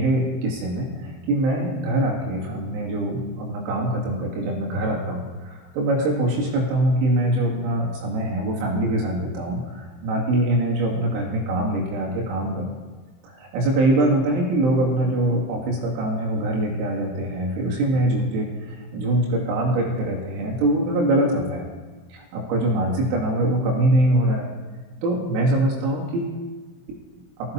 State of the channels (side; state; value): left; late; 23 ms